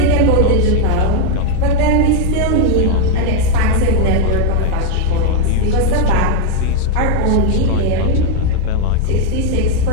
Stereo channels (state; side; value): different; both; correlation 0.00